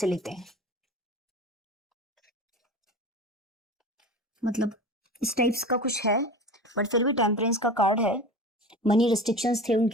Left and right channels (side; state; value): both; normal; correlation 0.33